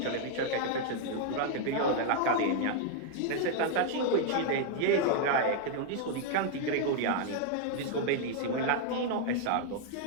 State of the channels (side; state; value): both; different; correlation -0.01